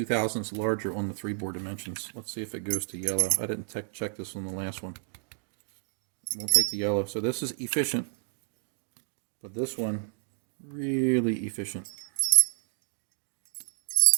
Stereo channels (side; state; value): left; silent; digital silence